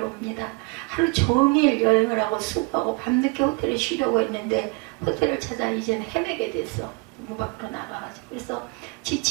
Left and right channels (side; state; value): left; quieter; 29.1 dB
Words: 하루 종일 여행을 하고 수고하고 밤늦게 호텔에 쉬려고 했는데 호텔을 찾아 이제는 헤매게 됐어. 문 밖으로 나가가지고. 그래서